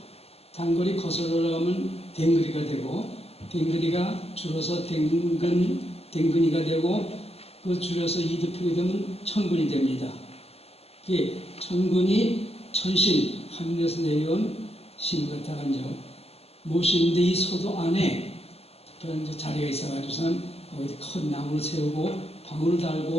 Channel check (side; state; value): right; late; 0.29 ms